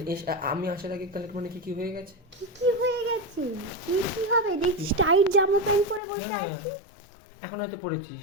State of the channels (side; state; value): right; drops out; at 6.0 s